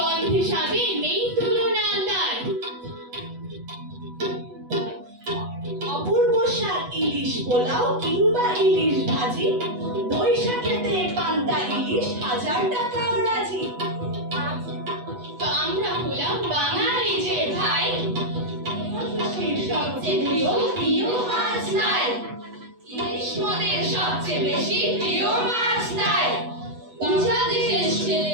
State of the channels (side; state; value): left; late; 8.1 ms